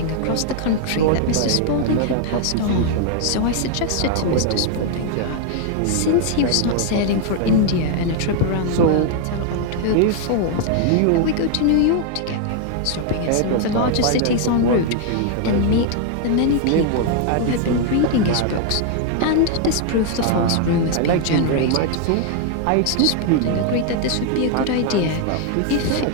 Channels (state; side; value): different; both; correlation 0.00